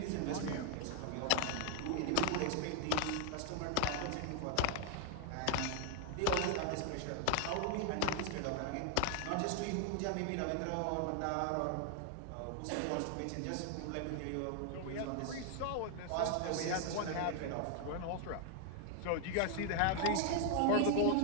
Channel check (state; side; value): different; both; correlation 0.00